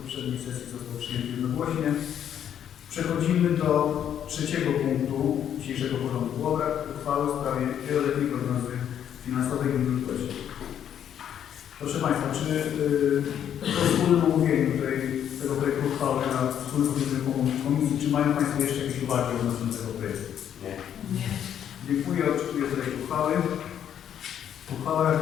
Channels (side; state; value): right; quieter; 9.5 dB